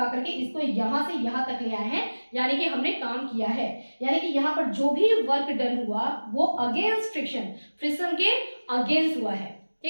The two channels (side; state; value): both; inverted; correlation -1.00